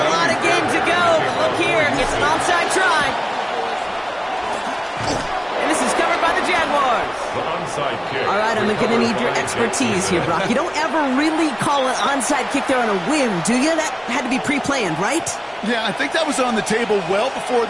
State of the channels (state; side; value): identical; both; correlation 1.00